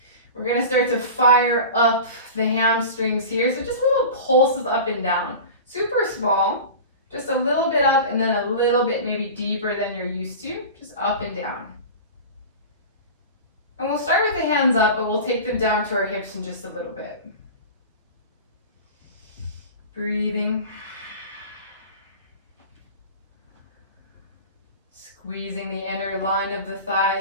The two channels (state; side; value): inverted; both; correlation -0.33